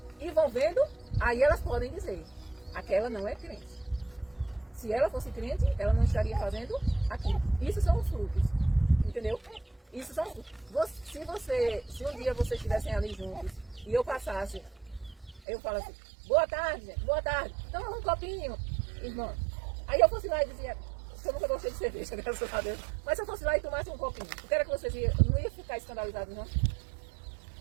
e vão vendo, aí elas podem dizer, aquela não é crente. Se ela fosse crente, ela não estaria fazendo aquilo. Isso são os frutos, entendeu? Isso são se um dia vocês estivessem ali juntos e eu passasse, eu falo assim, boa tarde, toma um copinho, irmã. Aí eu fosse lá e dizia, eu nunca gostei de cerveja, graças a Deus, mas se eu fosse lá e tomasse um copinho, o que era que vocês iam, não ia ficar escandalizados, não?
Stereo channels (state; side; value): drops out; left; at 15.4 s